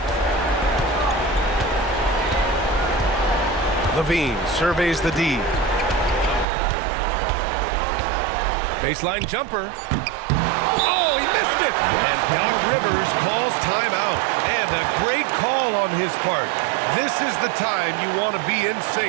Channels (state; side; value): drops out; left; at 6.5 s